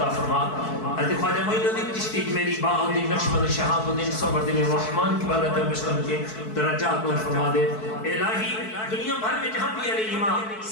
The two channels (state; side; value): late; right; 4.6 ms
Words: فرما۔ حضرت خواجہ معین الدین چشتی میری باء الدین نقشبند شہاب الدین صبر الدین الرحمن کی بارگاہ میں پیش کر کے درجات نو فرما دے۔ الہی دنیا بھر میں جہاں بھی علیہ